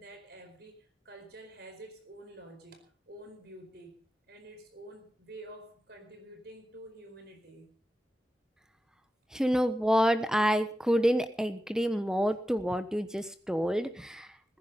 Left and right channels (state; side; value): normal; both; correlation 0.92